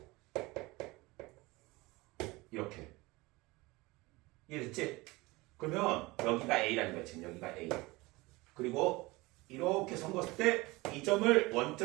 이렇게. 이해됐지? 그러면 여기가 A라는 거야. 지금 여기가 A. 그리고 이렇게 섞었을 때 이 점을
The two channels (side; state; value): left; quieter; 22.2 dB